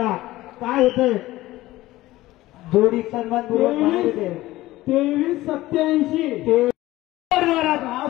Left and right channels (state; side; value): quieter; right; 17.0 dB